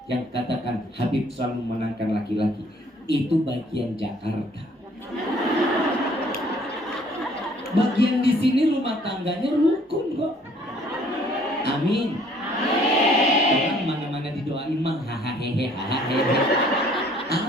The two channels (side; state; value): both; normal; correlation 0.59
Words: yang katakan Habib selalu memenangkan laki-laki. Itu bagian Jakarta. Bagian di sini rumah tangganya rukun kok. Amin. Orang mana-mana didoain mah hahaha hahaha.